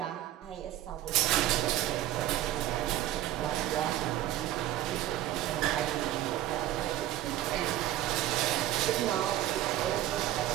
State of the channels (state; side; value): quieter; left; 13.6 dB